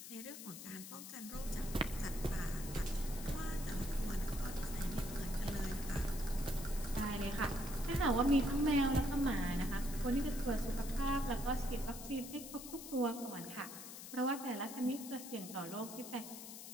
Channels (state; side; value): noise; left; hiss, 11 dB below the sound